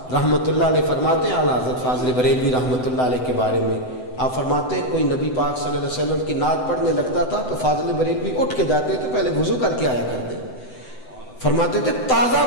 رحمۃ اللہ علیہ فرماتے ہیں، اعلیٰ حضرت فاضل بریلوی رحمۃ اللہ علیہ کے بارے میں، آپ فرماتے ہیں کوئی نبی پاک صلی اللہ علیہ وسلم کی نعت پڑھنے لگتا تھا تو فاضل بریلوی اٹھ کے جاتے تھے، پہلے وضو کر کے آیا کرتے، فرماتے تھے تازہ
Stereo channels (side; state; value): right; late; 7.9 ms